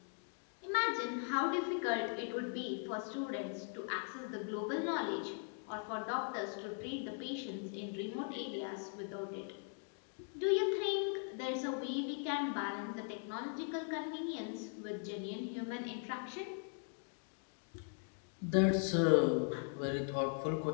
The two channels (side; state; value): right; silent; 51 dB below the other